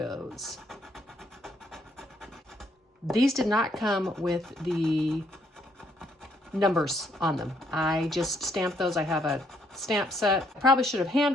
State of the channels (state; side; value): normal; both; correlation 0.71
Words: These did not come with the numbers on them. I just stamped those. I have a stamp set. I probably should have